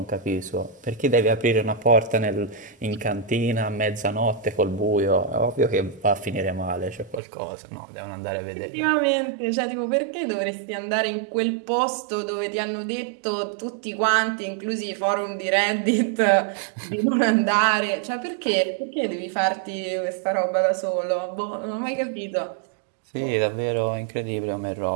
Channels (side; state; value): left; drops out; at 7.2 s